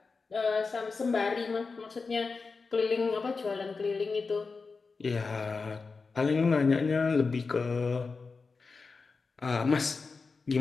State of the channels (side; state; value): right; quieter; 4.4 dB